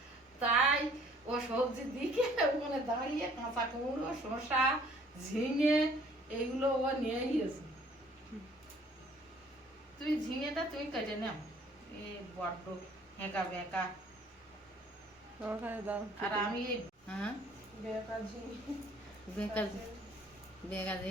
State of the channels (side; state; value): both; normal; correlation 0.57